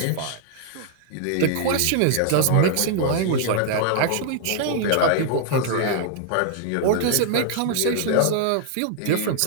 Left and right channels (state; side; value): different; both; correlation -0.01